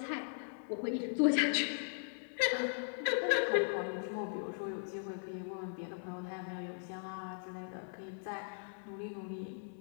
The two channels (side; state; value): right; silent; 52 dB below the other